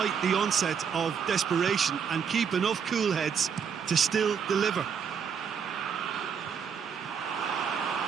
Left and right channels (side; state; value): left; quieter; 6.9 dB